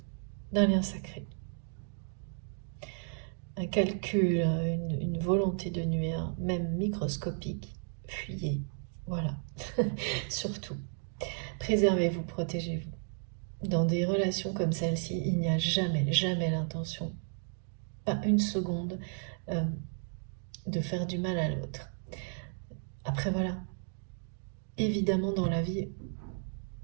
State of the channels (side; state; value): left; silent; 55 dB below the other